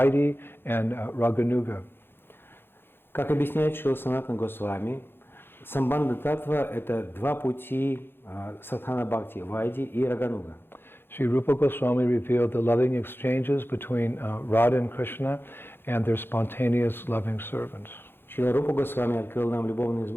and Raganuga. Как объясняет Шрила Санатана Госвами, Самбандха Таттва – это 2 пути Садхана Бхакти, Вайди и Рагануга. Sri Rupa Goswami revealed the loving exchanges between Radha and Krishna and their spontaneous loving servants. Шрила Рупа Госвами открыл нам любовные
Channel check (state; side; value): late; right; 0.10 ms